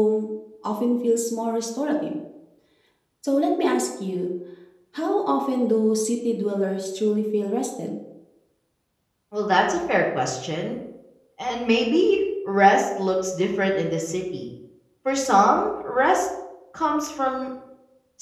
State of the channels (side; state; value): both; identical; correlation 1.00